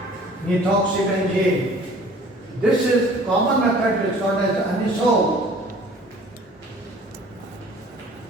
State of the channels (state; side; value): normal; both; correlation 0.50